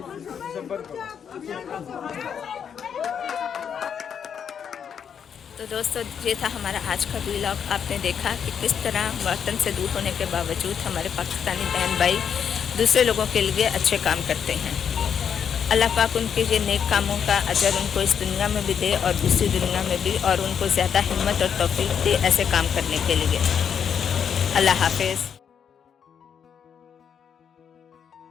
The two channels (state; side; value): quieter; right; 7.7 dB